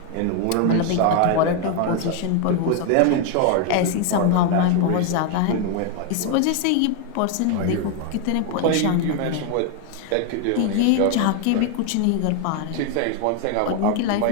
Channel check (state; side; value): different; both; correlation 0.01